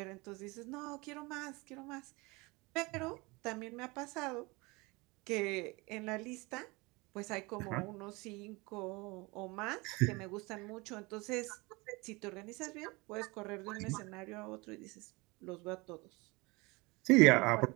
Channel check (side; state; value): left; quieter; 25.1 dB